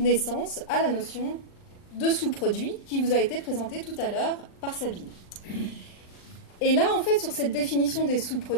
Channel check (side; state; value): right; late; 39 ms